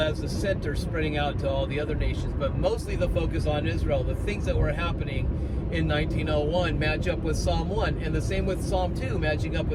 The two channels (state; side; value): identical; both; correlation 1.00